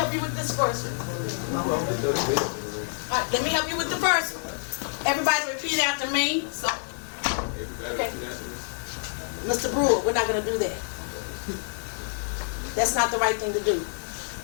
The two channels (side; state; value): right; silent; digital silence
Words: you with this first one. Alright, let me help you with the first one. Everybody repeat after me. So Everybody repeat after me. Mr. Brewer, we're not gonna do that. That's not the right thing to do.